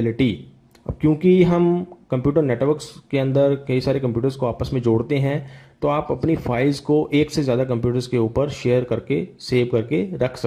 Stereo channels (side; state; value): both; identical; correlation 1.00